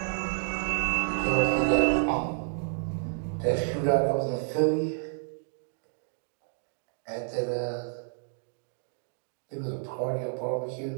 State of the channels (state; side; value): silent; left; digital silence